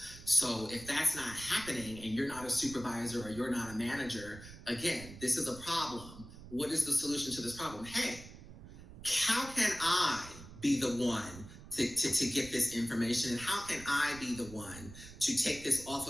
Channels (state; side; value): noise; right; rumble, 16 dB below the sound